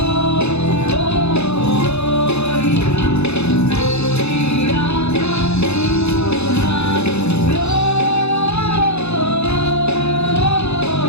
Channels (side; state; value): right; late; 0.80 ms